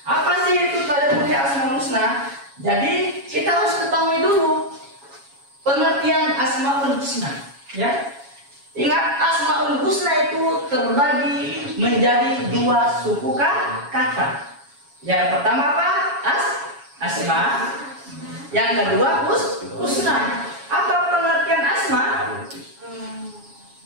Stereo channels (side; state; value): left; late; 7.2 ms